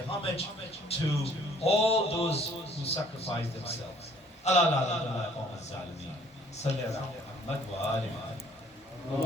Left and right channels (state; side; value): normal; both; correlation 0.58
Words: to all those who sacrifice themselves. Allah la qawm az-zalimin. Salli ala Muhammad wa ali